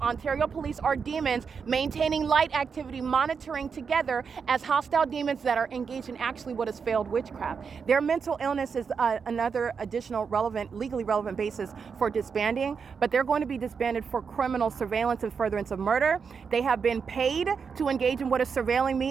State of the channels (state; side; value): quieter; left; 5.9 dB